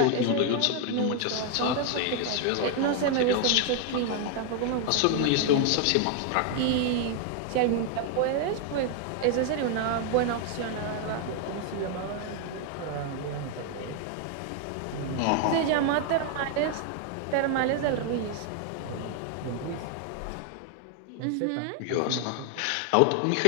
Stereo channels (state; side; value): different; both; correlation 0.00